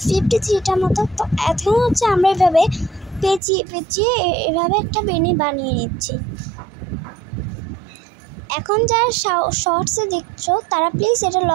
মতো। তো এখন আমরা এভাবে পেঁচিয়ে পেঁচিয়ে এভাবে একটা বেনি বানিয়ে নিচ্ছি। এখন যারা শর্টসে দেখছো তারা প্লিজ এটা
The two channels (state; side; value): drops out; left; at 3.4 s